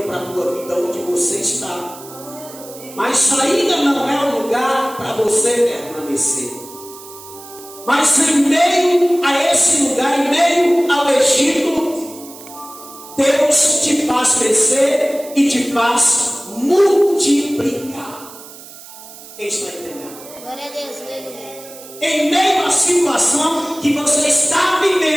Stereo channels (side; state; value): right; noise; hiss, 17 dB below the sound